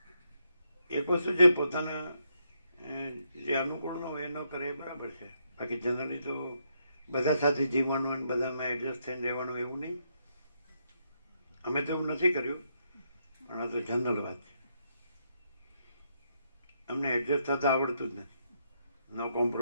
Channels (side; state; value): both; inverted; correlation -0.77